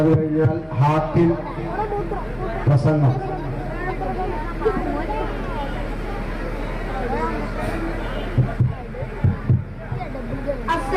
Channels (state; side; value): identical; both; correlation 1.00